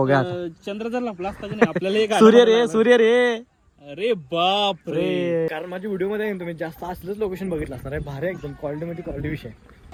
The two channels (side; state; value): both; identical; correlation 1.00